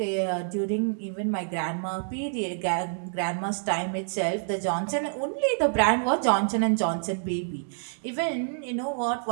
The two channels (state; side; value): silent; left; digital silence